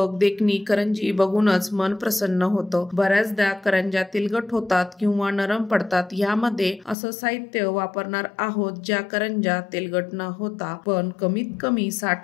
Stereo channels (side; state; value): right; drops out; at 7.0 s